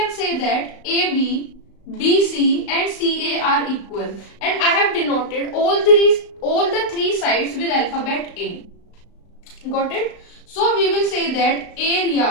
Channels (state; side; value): late; right; 35 ms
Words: say that AB, BC and CA are equal, and I have denoted all the three sides with alphabet A. Got it? So we will say that